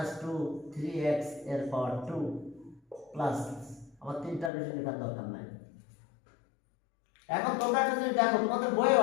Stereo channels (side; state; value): right; drops out; at 4.5 s